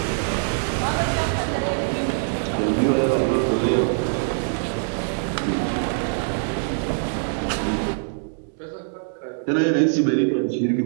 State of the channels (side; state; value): left; silent; digital silence